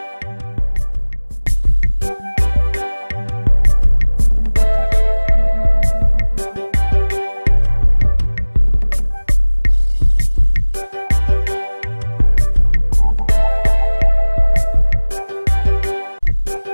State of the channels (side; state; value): both; inverted; correlation -1.00